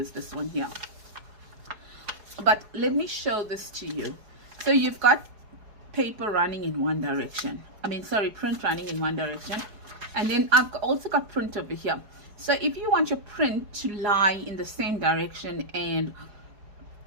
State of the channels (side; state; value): left; late; 4.7 ms